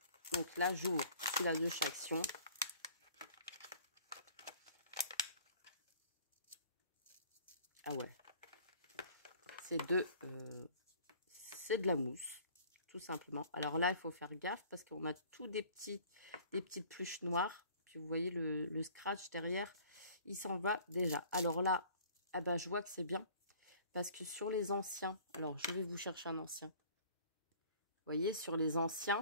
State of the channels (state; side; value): inverted; both; correlation -0.50